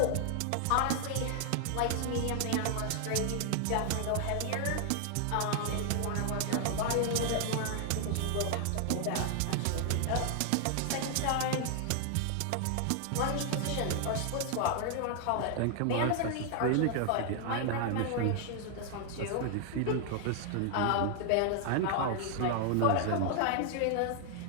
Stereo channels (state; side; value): different; both; correlation 0.00